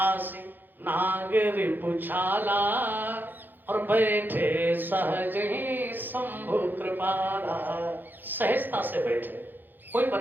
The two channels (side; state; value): left; late; 0.089 ms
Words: नागरी पुछाला, और बैठे सहज ही शंभु कृपाला। सहजता से बैठे, कोई